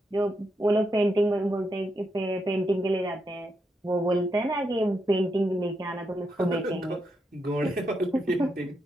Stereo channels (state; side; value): normal; both; correlation 0.82